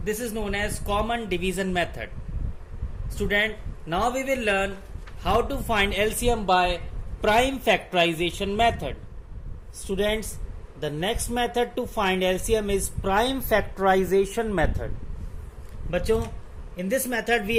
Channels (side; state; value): both; identical; correlation 1.00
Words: This is known as common division method. Student, now we will learn how to find LCM by prime factorization method. Students, the next method to find LCM is prime factorization method. बच्चों, in this method we